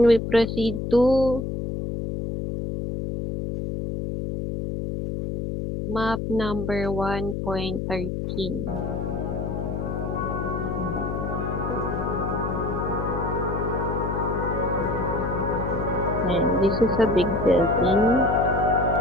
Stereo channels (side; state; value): left; noise; hum, 3 dB below the sound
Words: we proceed to map number 1.13. And this is a big building.